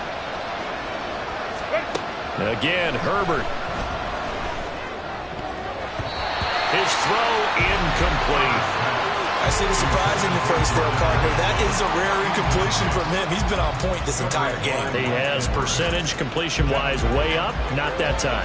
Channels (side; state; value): both; identical; correlation 1.00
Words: Again, Herbert. His throw incomplete. I see the surprise in your face there, partner. That is a rare incompletion from him. He's been on point this entire game. He has percentage completion-wise way up. Not that